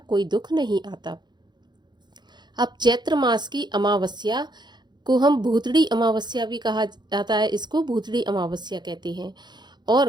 दुख नहीं आता। अब चैत्र मास की अमावस्या को हम भूतड़ी अमावस्या भी कहा जाता है, इसको भूतड़ी अमावस्या कहते हैं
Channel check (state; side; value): late; left; 0.21 ms